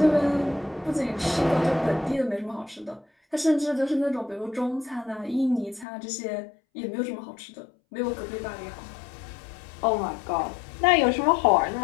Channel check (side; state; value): right; drops out; at 5.9 s